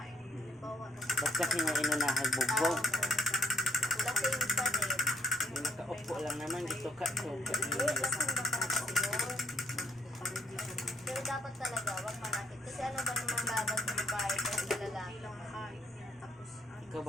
Halimbawa, Ba't kasi nga inunahan bugbog? Lasing pa din. Yung nakaupo lang naman dito ka to. Lasing ba pa kasi yun? Pero dapat talaga, wag malapit. Kasi ano ba namang laban sa babae kung sa lalaki? Ikaw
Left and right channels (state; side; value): normal; both; correlation 0.67